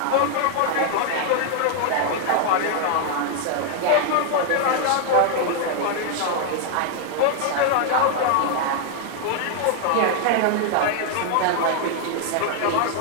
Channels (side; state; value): both; different; correlation 0.00